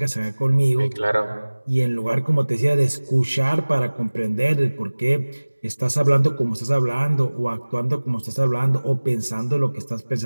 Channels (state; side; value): inverted; both; correlation -1.00